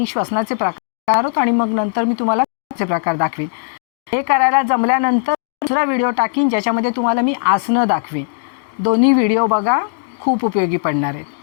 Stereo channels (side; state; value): right; silent; digital silence